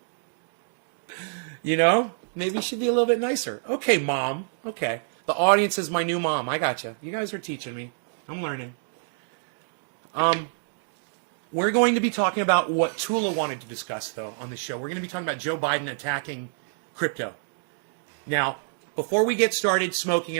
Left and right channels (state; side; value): silent; left; digital silence